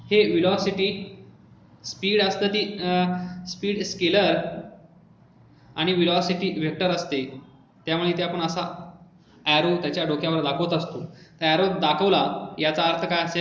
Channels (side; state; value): both; identical; correlation 1.00